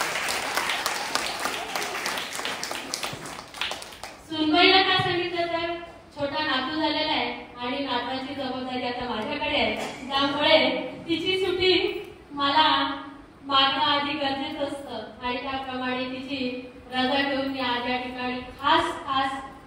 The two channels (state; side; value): identical; both; correlation 1.00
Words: सुनबाईला काय सांगितलं तर छोटा नातू झालेला आहे आणि नाताची जबाबदारी आता माझ्याकडे आहे, त्यामुळे तिची सुट्टी मला मागणं आधी गरजेचं असतं आणि त्याप्रमाणे तिची रजा घेऊन मी आज या ठिकाणी खास